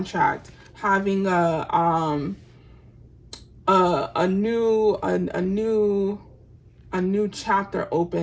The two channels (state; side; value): identical; both; correlation 1.00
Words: having a new chapter